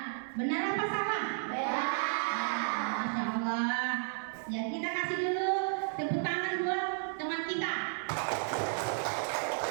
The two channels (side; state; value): left; silent; 56 dB below the other